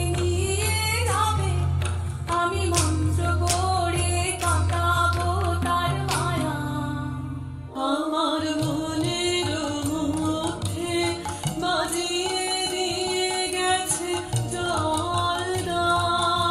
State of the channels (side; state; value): both; identical; correlation 1.00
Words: নিয়ে যাবে আমি মন্ত্র পড়ে কাটাবো তার মায়া আমার মনের মধ্যে বাজিয়ে দিয়ে গেছে জল